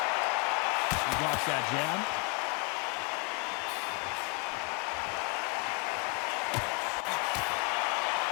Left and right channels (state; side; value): quieter; right; 31.4 dB